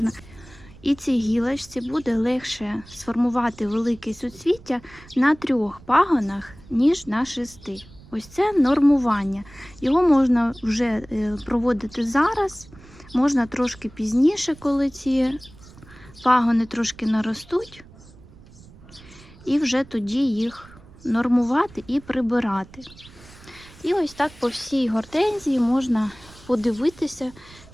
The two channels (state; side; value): noise; right; rumble, 22 dB below the sound